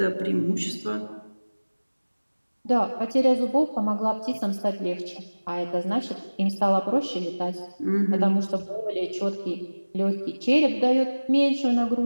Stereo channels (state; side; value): inverted; both; correlation -1.00